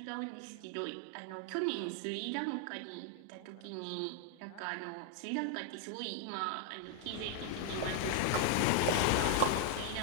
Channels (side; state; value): both; different; correlation 0.00